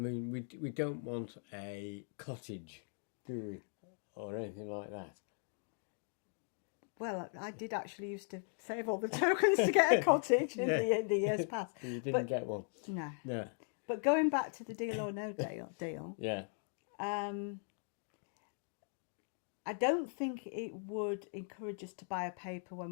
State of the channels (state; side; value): silent; right; 52 dB below the other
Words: we don't want a cottage, do we? Or anything like that. Well, I did actually used to save all the tokens to get a cottage in the years past. You didn't get one? No. No. But going back to the deal or no deal, Yeah. I don't think it would encourage us to buy a paper when